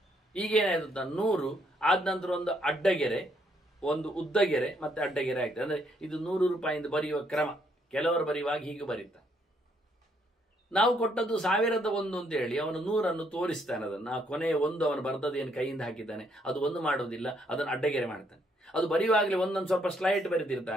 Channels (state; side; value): normal; both; correlation 0.71